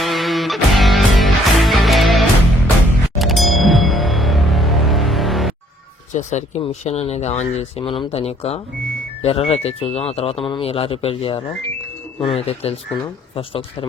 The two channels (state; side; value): normal; both; correlation 0.63